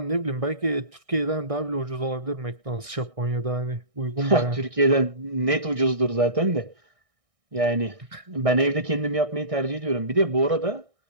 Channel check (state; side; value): late; left; 1.6 ms